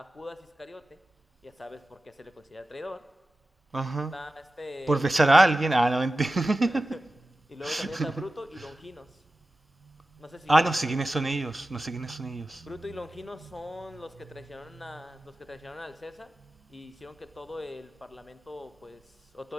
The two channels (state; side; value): normal; both; correlation 0.95